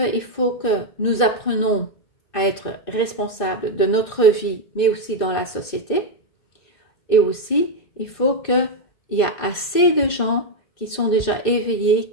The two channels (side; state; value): right; late; 2.2 ms